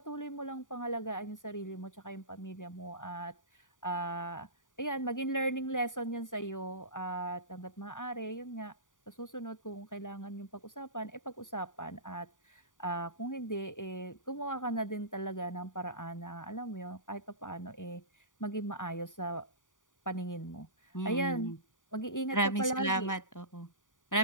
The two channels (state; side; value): late; right; 0.88 ms